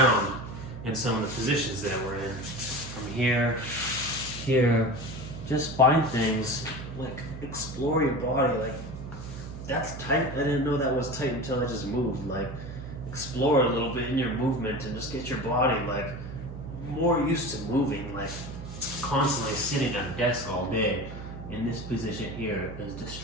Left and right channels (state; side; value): noise; right; hum, 10 dB below the sound